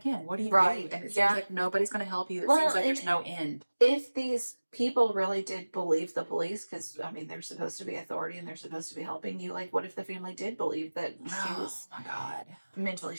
you Right. do? And it seems like nobody's going to help you. It seems like there's no end. If these people really did believe the police, because, I mean, they're supposed to be authority and they're supposed to be helping you, like, what if the family did believe that she was my God. mentally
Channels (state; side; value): inverted; both; correlation -1.00